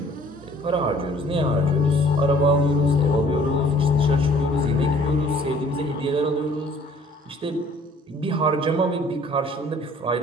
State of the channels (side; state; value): both; normal; correlation 0.56